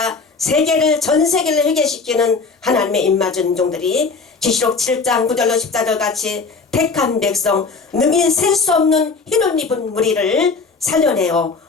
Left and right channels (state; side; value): quieter; right; 4.5 dB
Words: 세계를 전 세계를 회개시키는 하나님의 입맞은 종들이 계시록 7장 9절로 14절 같이 택한 백성 능히 셀 수 없는 흰옷 입은 무리를 살려내어